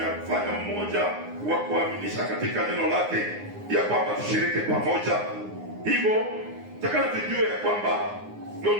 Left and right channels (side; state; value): left; late; 9.7 ms